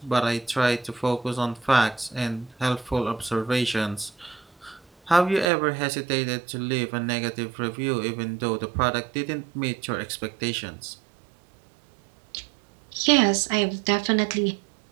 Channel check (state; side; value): drops out; left; at 5.5 s